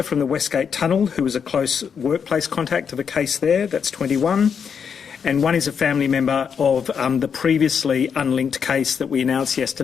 from the Westgate Tunnel who was a close workplace contact of a case there. That's 21. And 1 is a family member of the previously unlinked case that we announced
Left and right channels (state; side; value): quieter; right; 6.8 dB